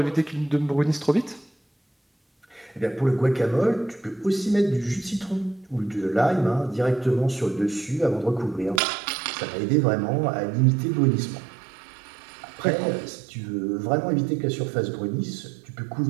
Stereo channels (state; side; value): drops out; left; at 8.8 s